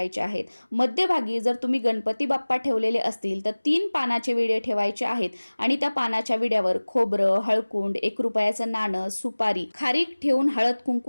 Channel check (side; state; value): both; inverted; correlation -1.00